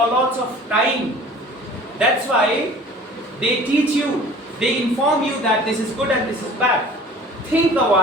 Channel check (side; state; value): both; normal; correlation 0.46